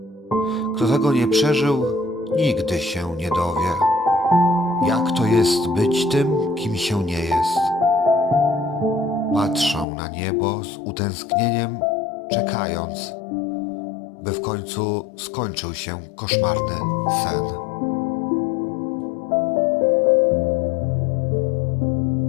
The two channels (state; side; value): drops out; right; at 9.9 s